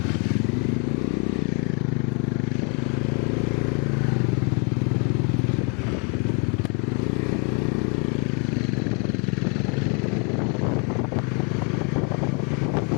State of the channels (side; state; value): right; quieter; 35.7 dB